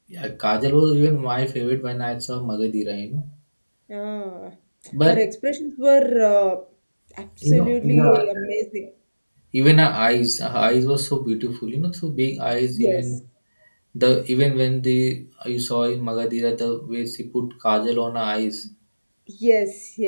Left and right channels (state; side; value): inverted; both; correlation -1.00